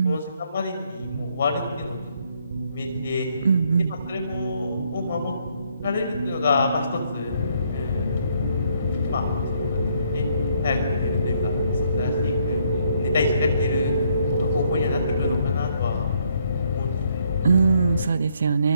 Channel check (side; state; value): both; inverted; correlation -0.70